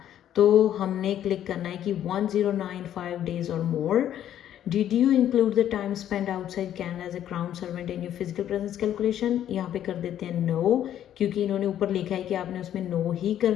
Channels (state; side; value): quieter; right; 11.0 dB